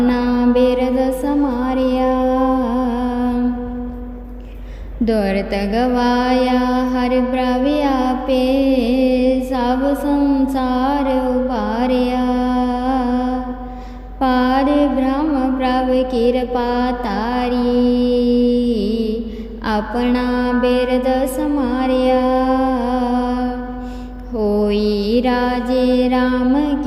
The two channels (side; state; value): both; identical; correlation 1.00